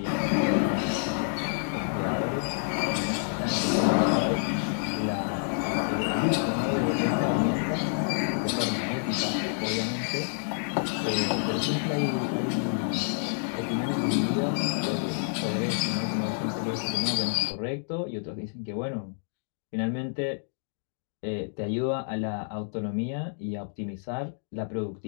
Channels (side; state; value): right; silent; digital silence